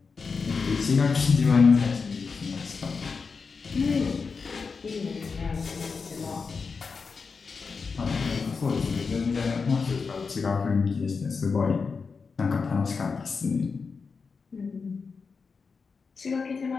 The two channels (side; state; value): right; quieter; 5.0 dB